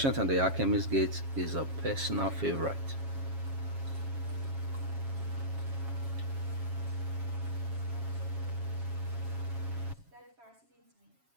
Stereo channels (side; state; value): left; late; 7.3 ms